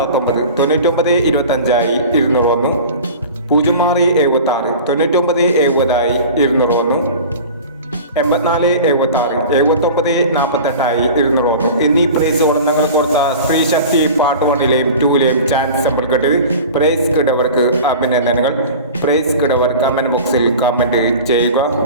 9970 201, 8476, 7948 201 എന്നീ പ്രൈസുകൾ ഞങ്ങൾ കൊടുത്ത സ്ത്രീ ശക്തി പാർട്ട് 1-ലെയും 2-ലെയും ചാൻസ് സിമ്പിൾ കിട്ടിയത്. പ്രൈസ് കിട്ടവർക്ക് അഭിനന്ദനങ്ങൾ. പ്രൈസ് കിട്ടവർ കമന്റ് ബോക്സിൽ കമന്റ് ചെയ്യുക.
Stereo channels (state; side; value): inverted; both; correlation -0.37